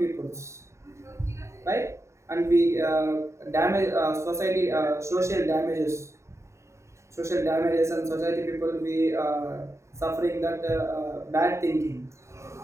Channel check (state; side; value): late; left; 0.14 ms